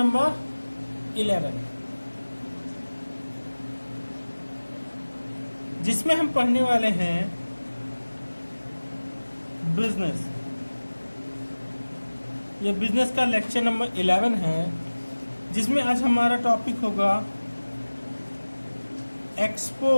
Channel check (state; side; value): inverted; both; correlation -1.00